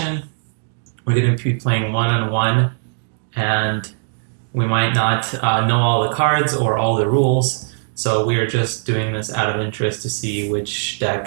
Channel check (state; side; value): silent; left; digital silence